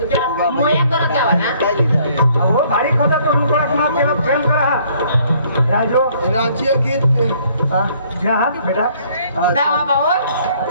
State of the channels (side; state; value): both; inverted; correlation -0.62